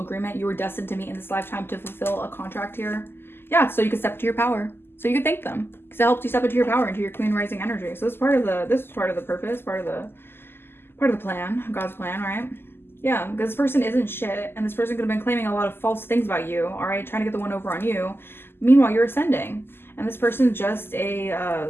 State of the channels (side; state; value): right; late; 0.11 ms